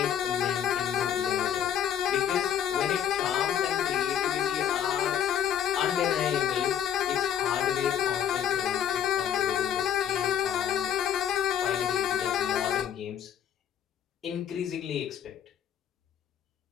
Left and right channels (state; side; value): quieter; right; 9.4 dB